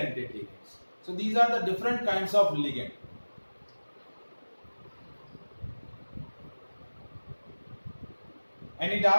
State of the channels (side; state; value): both; inverted; correlation -1.00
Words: ligands. So these are the different kinds of ligand. Any